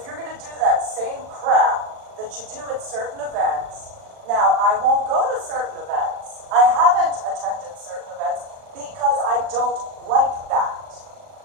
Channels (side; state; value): left; late; 39 ms